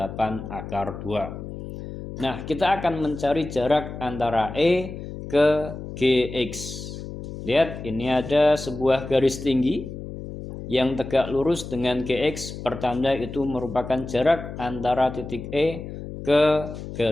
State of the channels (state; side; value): noise; left; hum, 10 dB below the sound